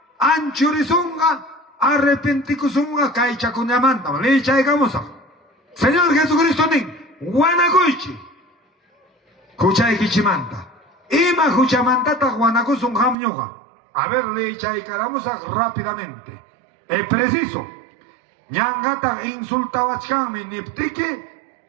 anchurizunga, arrepenticusunga, kaichacunyamanta, leicha y gamusa. Señor Jesucristo, nin. Guanacuichi, Juchay Kichimanta, Ima Juchamantata Guanacusun Hamñoga. A ver, le echay caramusa rápidamente. Es preciso. Ñangata insultawachkami niptiki,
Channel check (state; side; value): drops out; left; at 13.2 s